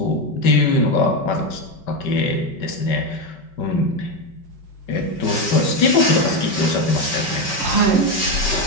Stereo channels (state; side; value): late; right; 5.2 ms